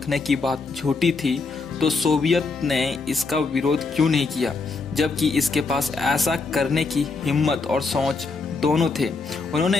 की बात झूठी थी तो सोवियत ने इसका विरोध क्यों नहीं किया, जबकि इसके पास ऐसा करने की हिम्मत और सोच दोनों थे।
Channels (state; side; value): quieter; right; 4.1 dB